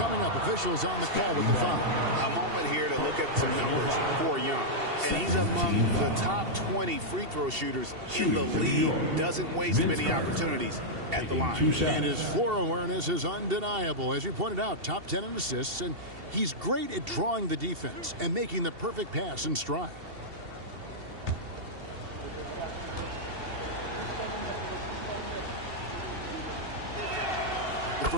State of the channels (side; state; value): left; late; 2.7 ms